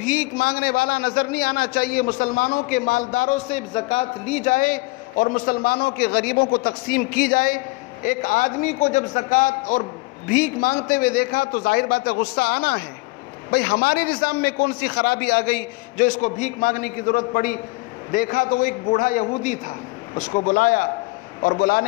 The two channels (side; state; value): right; quieter; 24.0 dB